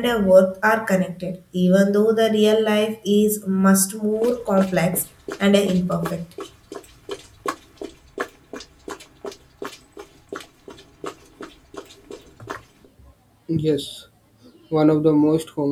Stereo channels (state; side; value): identical; both; correlation 1.00